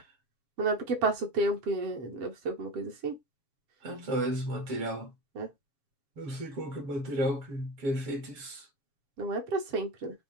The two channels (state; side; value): late; left; 7.2 ms